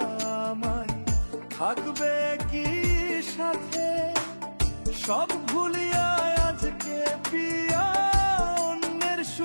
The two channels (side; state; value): both; inverted; correlation -1.00